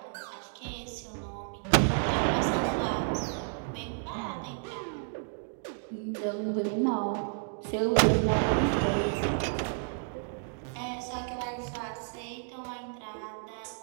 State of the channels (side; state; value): left; silent; 57 dB below the other